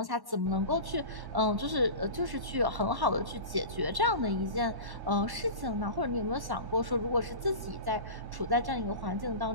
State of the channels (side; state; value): left; late; 1.1 ms